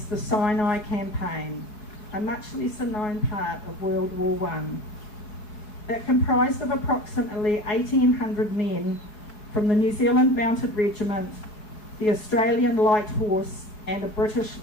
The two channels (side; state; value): right; late; 4.8 ms